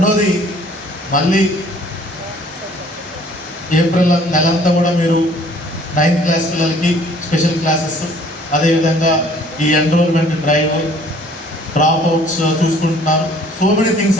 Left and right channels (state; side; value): normal; both; correlation 0.56